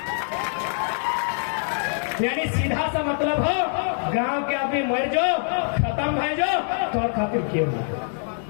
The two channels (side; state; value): right; silent; 62 dB below the other